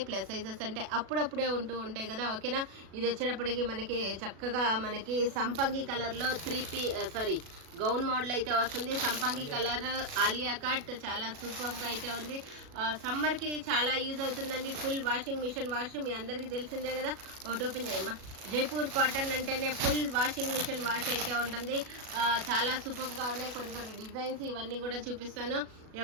ప్లస్ సైజెస్ అంటే అప్పుడప్పుడే ఉంటూ ఉంటాయి కదా, ఓకేనా. ఇది వచ్చేటప్పటికి మనకి చక్కగా మనకి సంపంగి కలర్లో గౌన్ మోడల్ అయితే వస్తుంది. సంపంగి కలర్ ఆలియా కట్ చాలా సూపర్ గా అయితే ఉంది. సమ్మర్ కి చాలా యూజ్ అవుతుందండి. ఫుల్ వాషింగ్ మిషన్ వాష్ మీ అందరికి తెలిసిందే కదా. ఒకటి ఓపెన్ చేయమ్మా. జైపూర్ కాటన్ అంటేనే ఫుల్ వాషింగ్ మిషన్ వాష్ అయితే ఉంటుంది. చాలా సూపర్ గా ఉన్నాయి. కొన్ని డిజైన్స్ ఇవన్నీ కూడా చూపిస్తాను.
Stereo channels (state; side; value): late; left; 37 ms